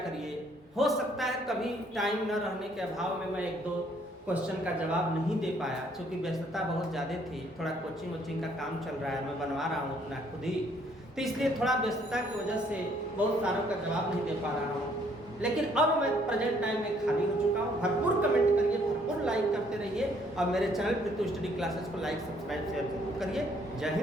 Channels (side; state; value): both; normal; correlation 0.65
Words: हो सकता है कभी टाइम न रहने के अभाव में मैं एक दो क्वेश्चन का जवाब नहीं दे पाया, क्योंकि व्यस्तता बहुत ज़्यादा थी, थोड़ा कोचिंग वोचिंग का काम चल रहा है, मैं बनवा रहा हूँ अपना खुद ही, तो इसलिए थोड़ा व्यस्तता की वजह से बहुत सारों का जवाब नहीं दे पा रहा हूँ। लेकिन अब मैं प्रेजेंट टाइम में खाली हो चुका हूँ। भरपूर कमेंट करिए, भरपूर लाइक करते रहिए और मेरे चैनल पृथु स्टडी क्लासेस को लाइक सब्सक्राइब शेयर जरूर करिए। जय